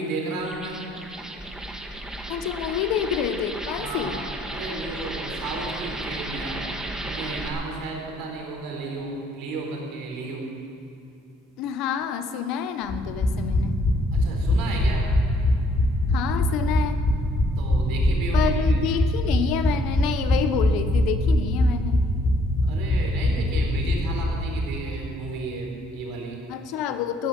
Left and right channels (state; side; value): normal; both; correlation 0.65